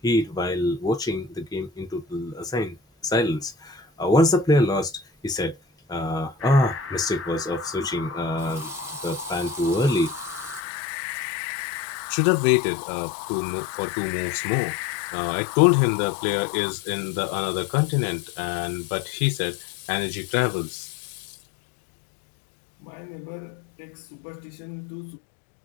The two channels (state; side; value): drops out; right; at 10.6 s